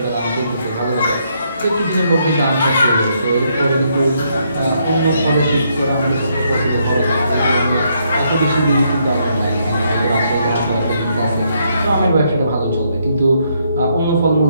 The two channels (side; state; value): both; inverted; correlation -0.74